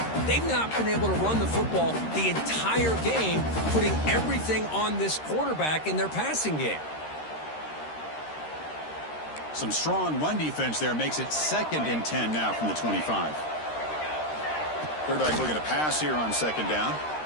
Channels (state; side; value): late; right; 13 ms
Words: They've not been able to run the football the entire game, putting everything on this quarterback in their passing game. Some strong run defense there makes it 2nd and 10 now from the 25. Quarterback looking to pass here on 2nd down.